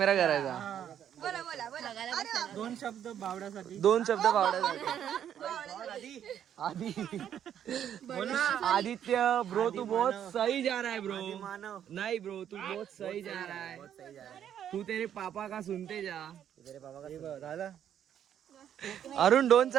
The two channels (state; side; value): quieter; left; 9.7 dB